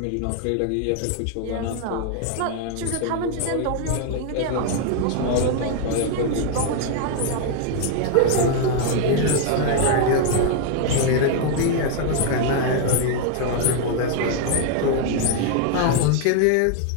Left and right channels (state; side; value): different; both; correlation 0.00